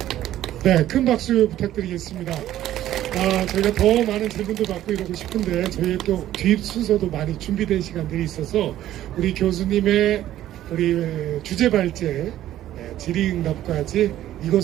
네, 큰 박수 부탁드리겠습니다. 저희가 더 많은 질문도 받고 이러고 싶은데 저희 또 뒤 순서도 많이 준비된 시간들이 있어서 우리 교수님의 우리 주제 발제 질의응답까지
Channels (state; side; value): quieter; left; 13.0 dB